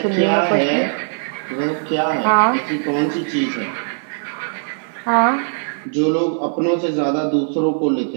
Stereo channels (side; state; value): left; silent; digital silence